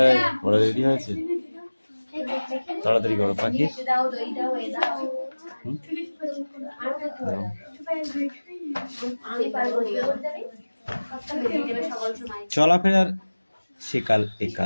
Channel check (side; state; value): both; inverted; correlation -1.00